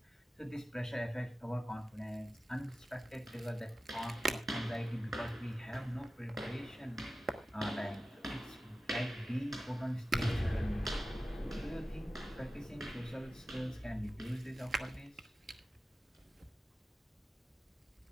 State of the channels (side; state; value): both; normal; correlation 0.94